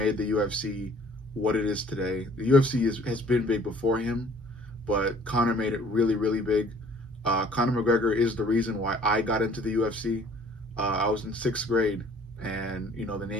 the UFC what it is today. The UFC has been big before him, but Conor made it really, really big. Conor McGregor is the reason why I got into the UFC. I was in 6th grade, and the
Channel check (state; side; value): normal; both; correlation 0.55